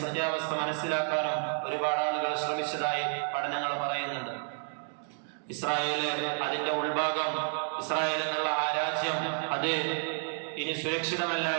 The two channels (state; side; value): silent; left; digital silence